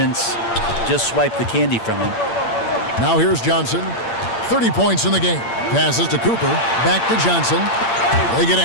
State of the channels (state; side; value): late; right; 8.7 ms